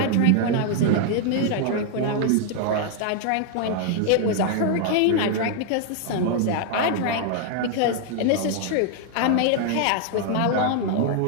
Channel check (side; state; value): both; different; correlation 0.00